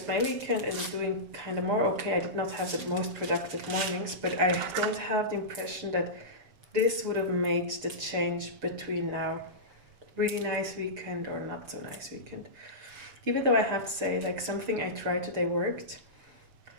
my weekend in doing kind of more. Okay, I did not have the most productive mornings, but I don't have the impression that this would have made the change between now. Really nice weekend or not so nice weekend. Even though I have to say, like, something I tried today worked.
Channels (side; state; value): left; late; 6.8 ms